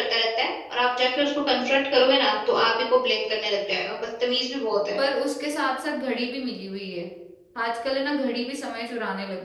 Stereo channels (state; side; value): identical; both; correlation 1.00